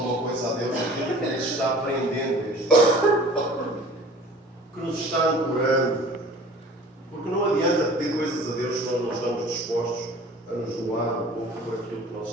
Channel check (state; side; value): normal; both; correlation 0.45